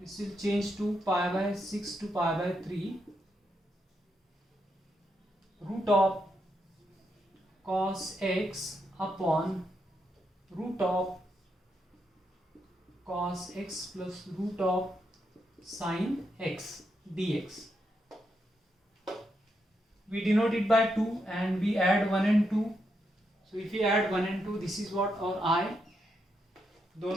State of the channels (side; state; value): both; normal; correlation 0.81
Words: will change to pi by 6 to pi by 3 root of cos x upon root of cos x plus root of sin x dx. We denote it by 2 and we add 1 and 2. So if we add 1 and 2, this is what our I.